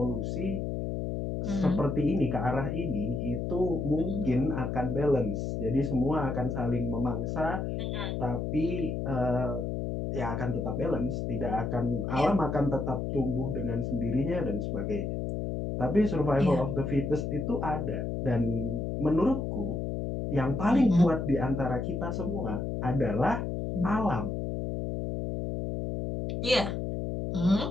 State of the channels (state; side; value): noise; left; hum, 2 dB below the sound